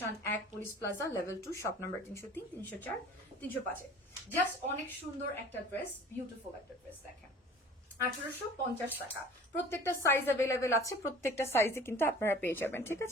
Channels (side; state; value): both; normal; correlation 0.46